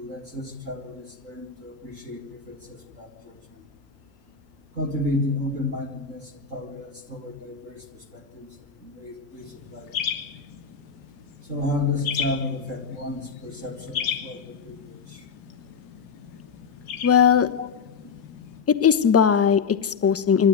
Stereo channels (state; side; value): quieter; right; 6.0 dB